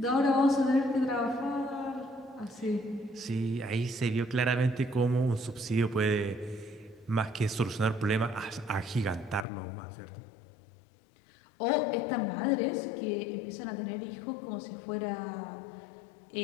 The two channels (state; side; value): drops out; right; at 9.5 s